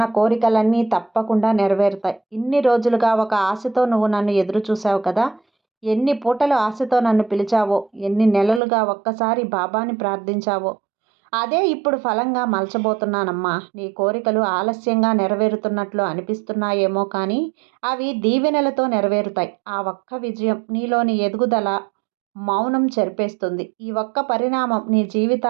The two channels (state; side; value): drops out; left; at 8.6 s